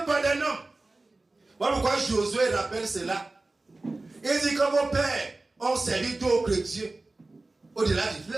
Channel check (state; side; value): quieter; left; 3.1 dB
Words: d'un homme. Voilà pourquoi Josué rappelle cela. Il dit que vos pères ont servi d'autres dieux au-delà du